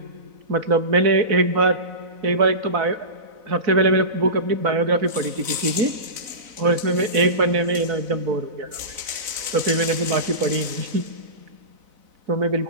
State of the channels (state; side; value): late; left; 4.0 ms